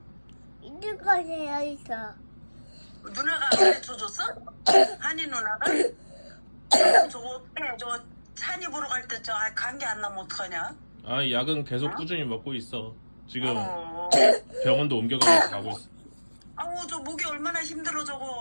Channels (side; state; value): both; inverted; correlation -1.00